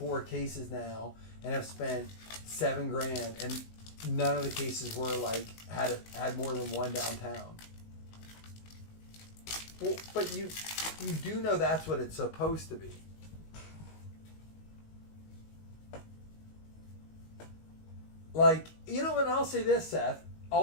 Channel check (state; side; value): late; right; 19 ms